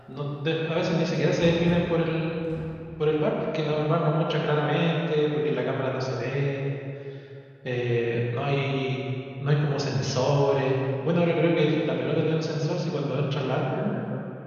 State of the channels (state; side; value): identical; both; correlation 1.00